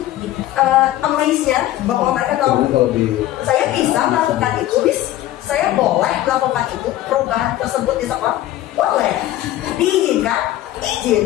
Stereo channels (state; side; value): quieter; right; 14.5 dB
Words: amaze-nya bahwa mereka tahu saya bisa melakukan itu, saya boleh melakukan itu, perubahan tersebut di sekolah boleh, diizinkan,